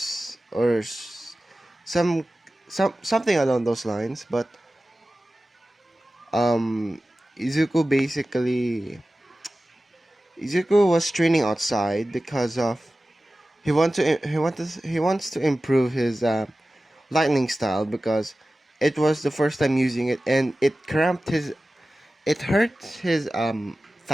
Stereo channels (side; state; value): both; normal; correlation 0.95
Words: some something along those lines. But um, Izuku basically Izuku was training outside because of he wants to improve his lightning style because it was the first time using it and it hurt his